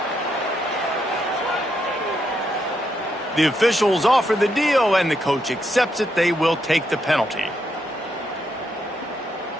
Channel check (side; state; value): both; normal; correlation 0.79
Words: The officials offer the deal, and the coach accepts it. They will take the penalty.